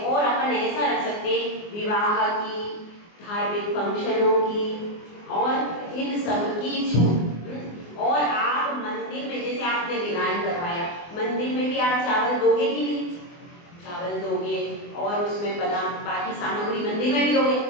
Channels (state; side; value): late; right; 24 ms